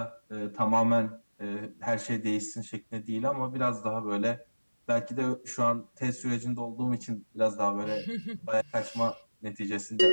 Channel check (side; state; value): both; inverted; correlation -1.00